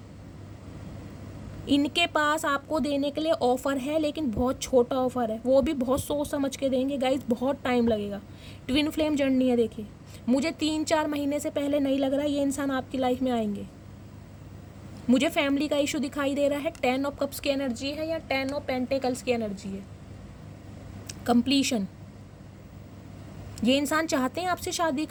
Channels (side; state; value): both; identical; correlation 1.00